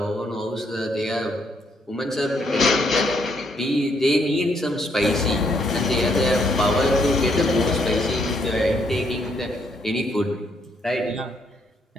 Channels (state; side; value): normal; both; correlation 0.72